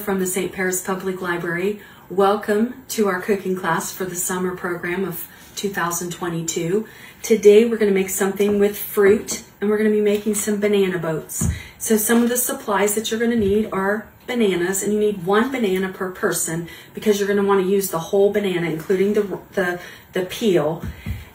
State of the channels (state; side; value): identical; both; correlation 1.00